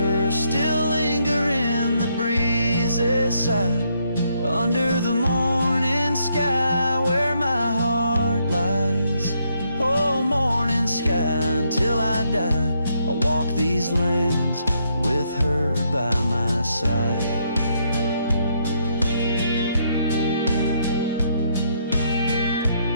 still linger in the breeze's side, under the morning sky where my heart lies. Oh, morning sky, until I die, I'll walk these lands with her by my side.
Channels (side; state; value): both; inverted; correlation -0.74